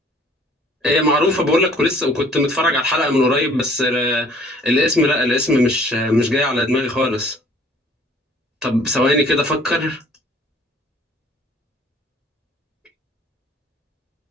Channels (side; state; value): both; normal; correlation 0.55